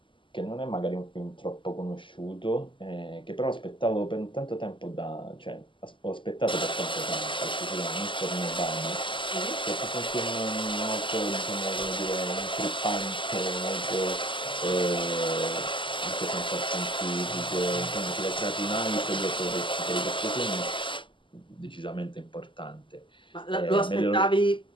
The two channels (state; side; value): late; right; 0.25 ms